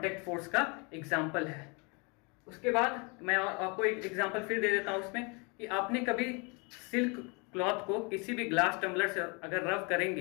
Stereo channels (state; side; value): quieter; right; 31.4 dB